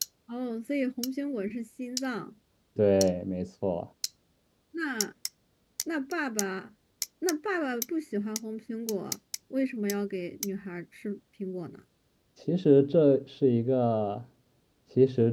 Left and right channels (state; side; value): identical; both; correlation 1.00